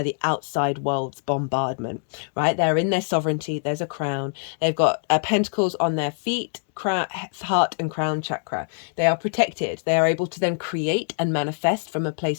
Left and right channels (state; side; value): silent; right; digital silence